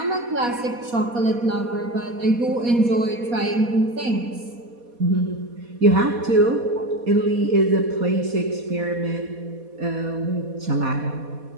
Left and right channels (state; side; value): late; left; 4.2 ms